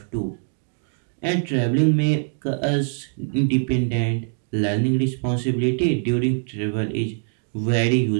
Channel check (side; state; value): left; silent; digital silence